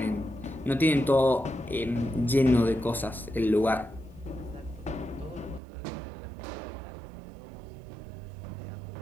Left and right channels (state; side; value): drops out; left; at 5.6 s